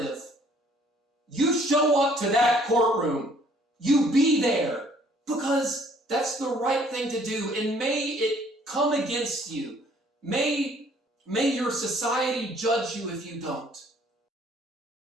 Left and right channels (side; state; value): both; normal; correlation 0.60